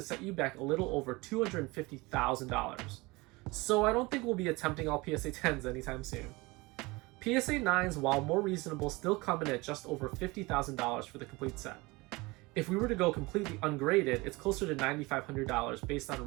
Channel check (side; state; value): left; quieter; 23.5 dB